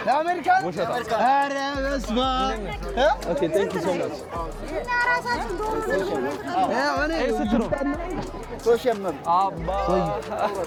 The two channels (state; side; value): identical; both; correlation 1.00